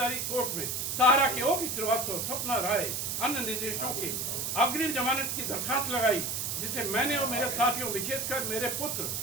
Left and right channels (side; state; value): right; noise; hiss, 2 dB below the sound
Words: कोर्ट में सहारा के ओपी श्रीवास्तव, स्वप्ना राय, अन्य निर्देशों के अग्रिम जमानत की दरखास्त लगाई, जिसे मैंने और मेरे साथियों, विशेषकर मेरे पुत्र